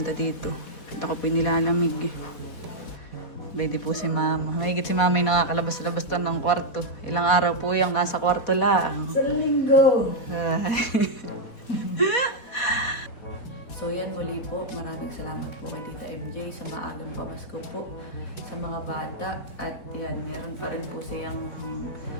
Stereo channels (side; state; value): right; late; 4.2 ms